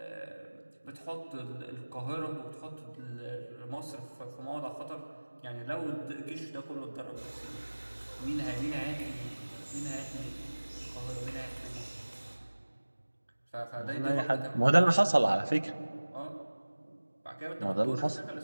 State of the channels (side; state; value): both; inverted; correlation -1.00